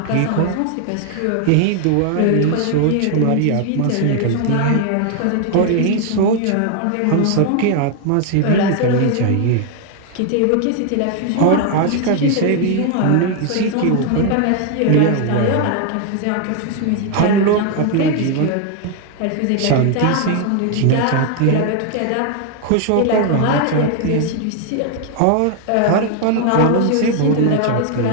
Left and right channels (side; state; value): both; different; correlation 0.00